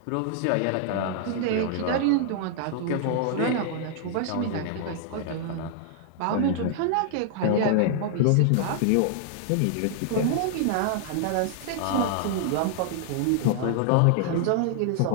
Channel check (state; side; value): different; both; correlation -0.01